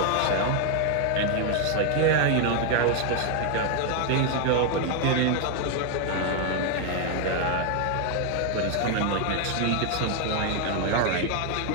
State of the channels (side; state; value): both; different; correlation 0.00